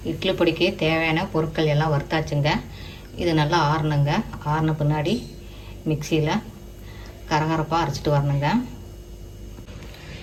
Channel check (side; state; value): both; identical; correlation 1.00